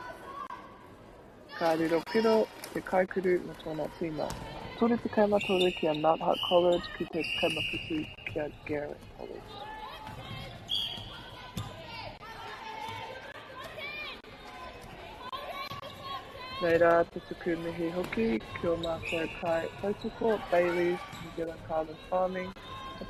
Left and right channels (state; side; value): identical; both; correlation 1.00